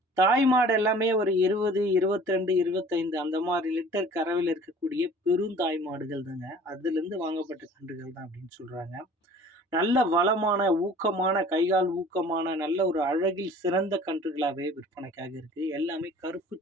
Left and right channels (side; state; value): both; normal; correlation 0.48